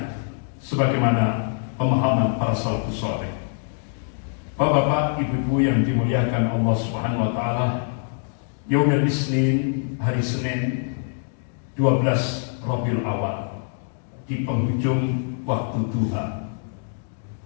sebagaimana pemahaman para salafus saleh. Bapak-bapak, ibu-ibu yang dimuliakan Allah Subhanahu wa taala, Yaumul Isnin, hari Senin 12 Rabiul Awal, di penghujung waktu duha.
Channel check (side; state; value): right; silent; digital silence